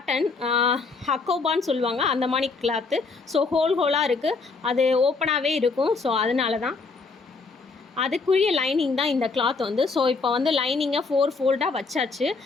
ஹக்கோபான்னு சொல்லுவாங்க, அந்த மாதிரி கிளாத்து. ஸோ ஹோலாக இருக்குது, அது ஓப்பனாகவே இருக்கும். ஸோ அதனால தான் அதுக்குரிய லைனிங் தான் இந்த கிளாத் வந்து. ஸோ இப்போ வந்து லைனிங்கை 4 ஃபோல்டாக வச்சாச்சு.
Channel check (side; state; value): right; quieter; 4.3 dB